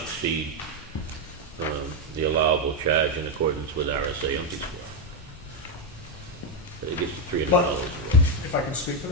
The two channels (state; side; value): normal; both; correlation 0.04